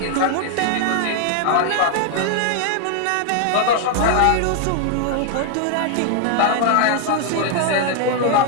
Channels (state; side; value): different; both; correlation 0.00